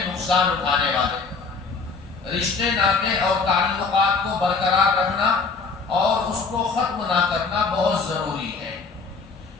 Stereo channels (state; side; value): quieter; right; 4.5 dB